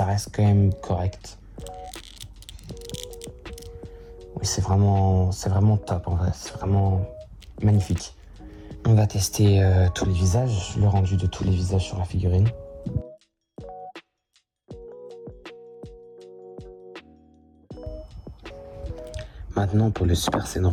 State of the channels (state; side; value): identical; both; correlation 1.00